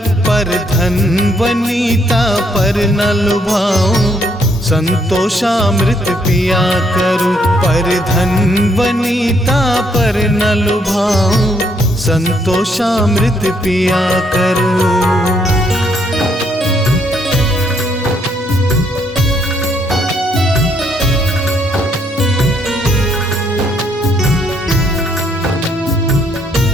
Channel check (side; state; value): both; normal; correlation 0.71